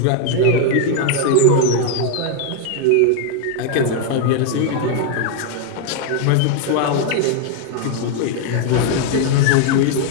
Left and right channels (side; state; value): both; different; correlation 0.00